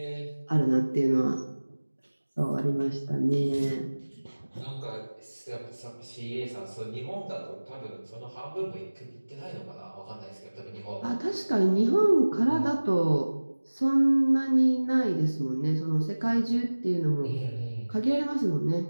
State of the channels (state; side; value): inverted; both; correlation -1.00